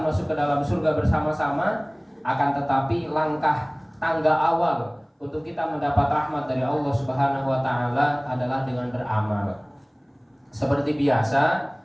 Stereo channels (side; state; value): both; identical; correlation 1.00